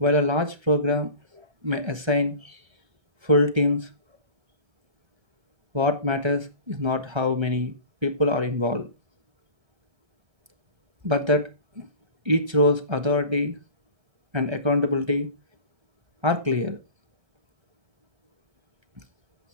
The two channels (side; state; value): left; late; 1.3 ms